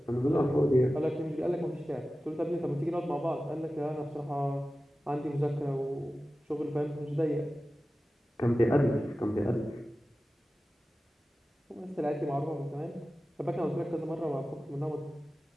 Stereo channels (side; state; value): both; normal; correlation 0.95